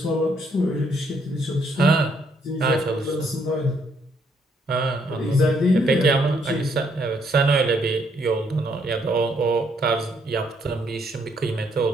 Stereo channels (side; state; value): both; normal; correlation 0.71